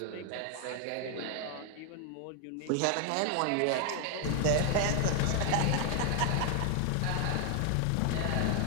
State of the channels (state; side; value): different; both; correlation 0.01